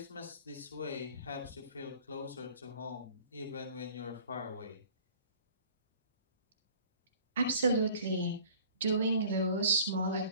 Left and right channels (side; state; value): both; inverted; correlation -0.49